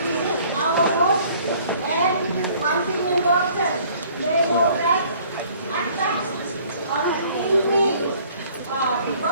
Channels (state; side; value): inverted; both; correlation -0.56